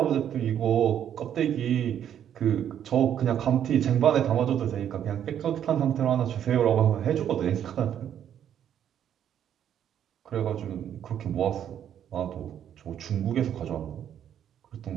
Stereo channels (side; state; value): left; quieter; 9.7 dB